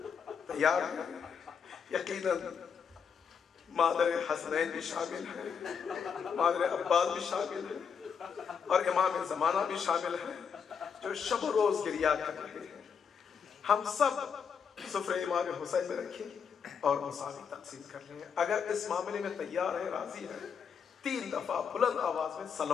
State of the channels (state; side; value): quieter; right; 6.7 dB